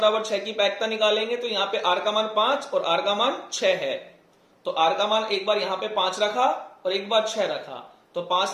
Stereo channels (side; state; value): both; identical; correlation 1.00